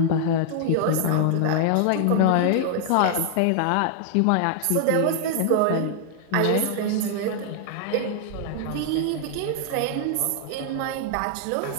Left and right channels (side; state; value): both; different; correlation -0.01